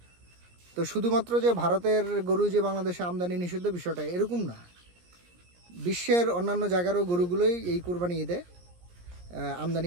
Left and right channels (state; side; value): late; left; 17 ms